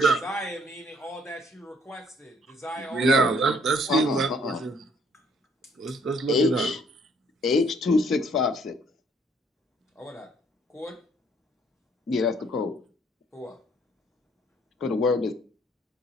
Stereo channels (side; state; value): both; normal; correlation 0.64